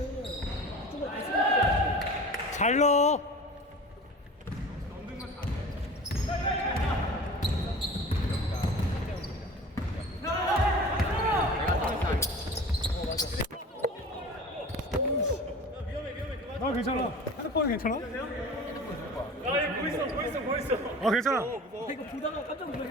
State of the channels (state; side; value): normal; both; correlation 0.38